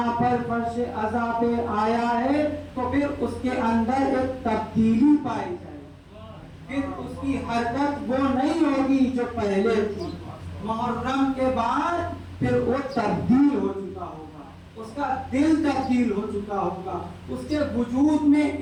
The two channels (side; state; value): both; identical; correlation 1.00